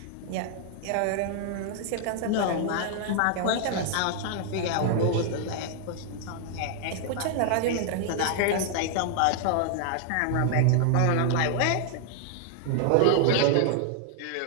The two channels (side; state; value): both; different; correlation 0.00